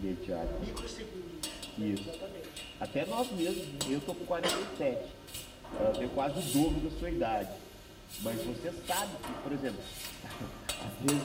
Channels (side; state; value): both; identical; correlation 1.00